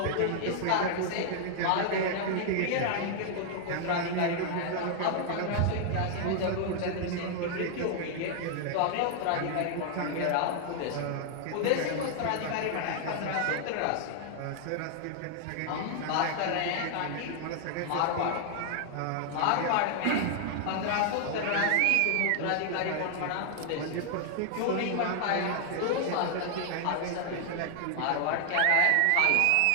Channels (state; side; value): different; both; correlation 0.00